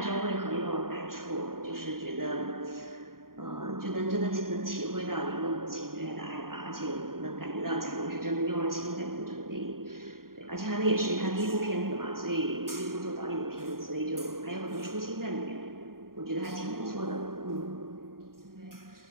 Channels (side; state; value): left; late; 0.92 ms